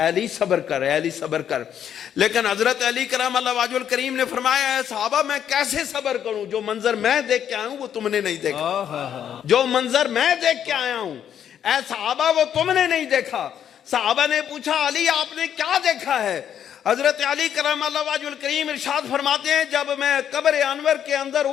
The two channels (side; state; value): right; quieter; 9.3 dB